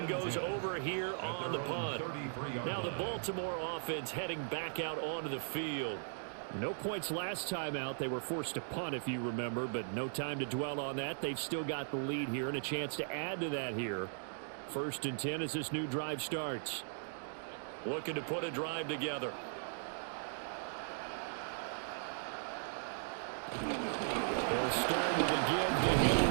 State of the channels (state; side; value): silent; left; digital silence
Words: goes over here on the punt. Now the Baltimore offense heading back out onto the field. No points last time out. They were forced to punt, if you remember, but no time to dwell on that. They've still got the lead here and a chance to add to that here. 1st and 10 as this new drive starts. Looking to put a drive together. He'll start with a give to